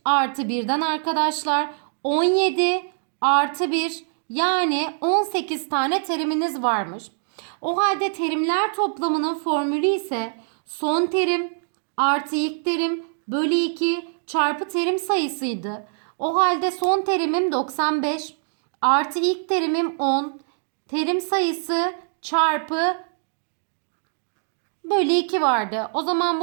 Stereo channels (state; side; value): silent; left; digital silence